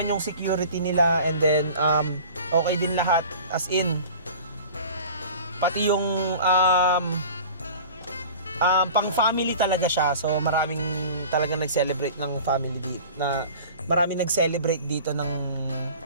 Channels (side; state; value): both; inverted; correlation -0.41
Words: yung security nila, and then okay din lahat, as in pati yung pang family talaga siya. So maraming talagang nag-celebrate ng family dito, na maraming nag-celebrate dito ng